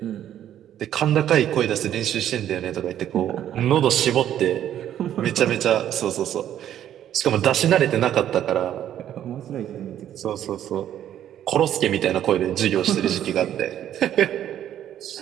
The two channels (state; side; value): quieter; left; 11.0 dB